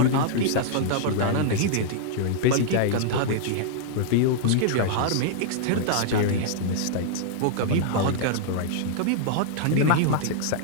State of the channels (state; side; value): different; both; correlation -0.01